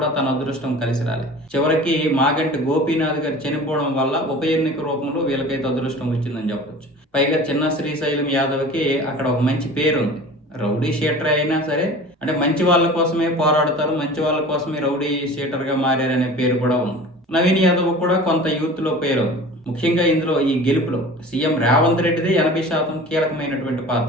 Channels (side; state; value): both; normal; correlation 0.40